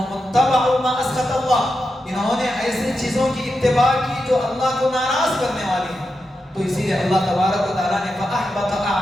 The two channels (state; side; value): normal; both; correlation 0.88